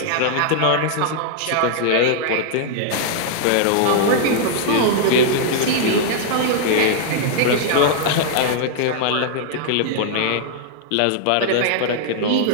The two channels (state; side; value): different; both; correlation -0.01